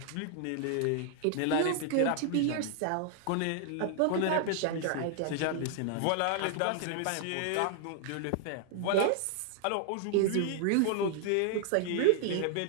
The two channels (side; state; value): both; different; correlation 0.00